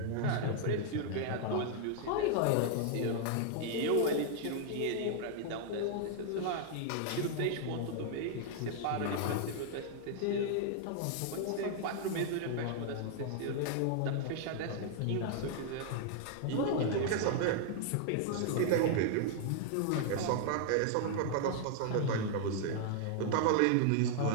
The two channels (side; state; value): both; different; correlation -0.01